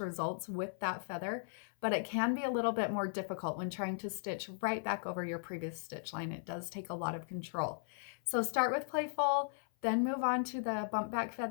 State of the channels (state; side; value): silent; right; 53 dB below the other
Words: results with that feather, but it can be a little bit more difficult when trying to stitch right back over your previous stitch line. It does take a lot of control. So start with playful, then move on to the bump back